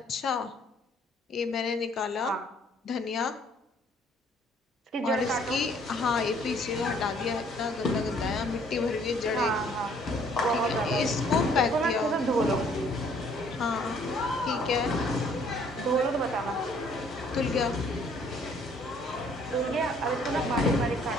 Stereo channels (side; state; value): both; normal; correlation 0.61